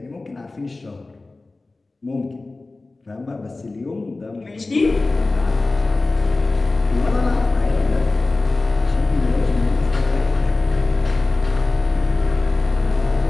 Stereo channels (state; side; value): quieter; right; 3.3 dB